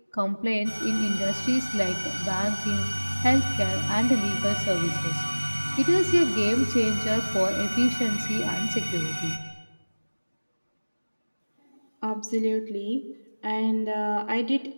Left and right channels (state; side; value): inverted; both; correlation -1.00